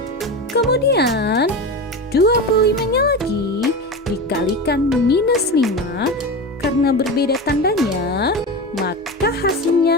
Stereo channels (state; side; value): normal; both; correlation 0.24